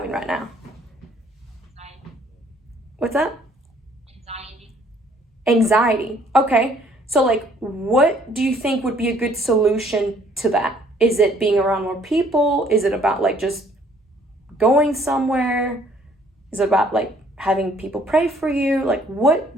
right now? Anxiety. What's that? Anxiety. Anxiety. Okay. So like, what do you think would be a good solution to that? Is it being around more people? Is it about like just going somewhere? Is it about like having people pray for you? Like, what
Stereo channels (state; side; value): normal; both; correlation 0.61